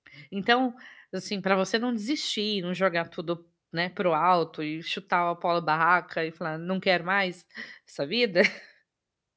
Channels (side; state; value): both; identical; correlation 1.00